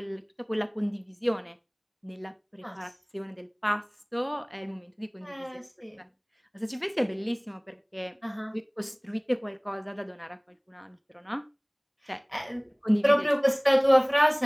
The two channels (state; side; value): identical; both; correlation 1.00